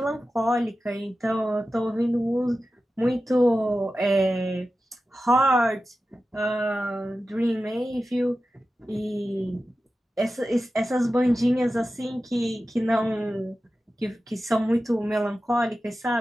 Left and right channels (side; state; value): both; normal; correlation 0.93